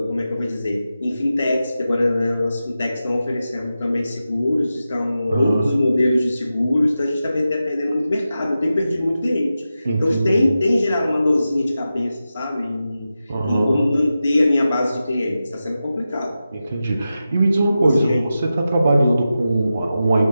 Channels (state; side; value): inverted; both; correlation -0.92